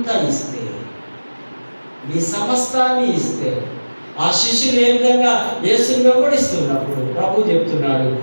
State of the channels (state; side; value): inverted; both; correlation -1.00